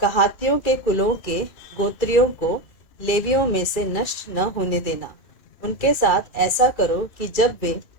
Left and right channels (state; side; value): late; right; 2.6 ms